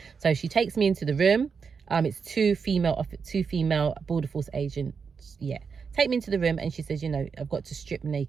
So she takes me into the room. It's two female border force agents. Yeah, take me into the room, and she says, you know, I've got to strip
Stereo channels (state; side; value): quieter; left; 5.8 dB